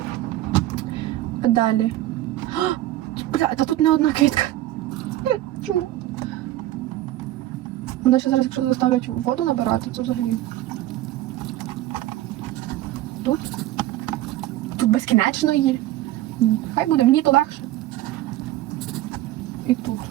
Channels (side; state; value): left; quieter; 15.0 dB